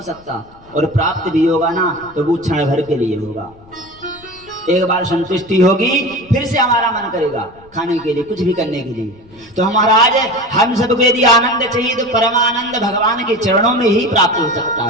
सकता। और प्राप्त भी होगा ना तो वो क्षण भर के लिए होगा। एक बार संतुष्टि होगी फिर से हमारा मन करेगा खाने के लिए, कुछ भी करने के लिए। तो महाराज हम सबको यदि आनंद चाहिए तो परमानंद भगवान के चरणों में ही प्राप्त हो सकता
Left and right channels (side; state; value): left; noise; rumble, 26 dB below the sound